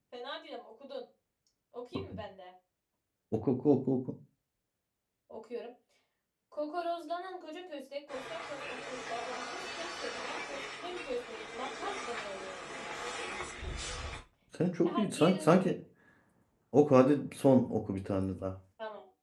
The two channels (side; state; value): both; identical; correlation 1.00